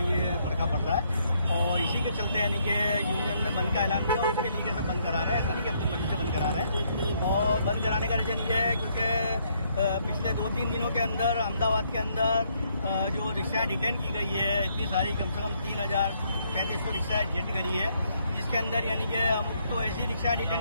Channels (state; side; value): inverted; both; correlation -0.71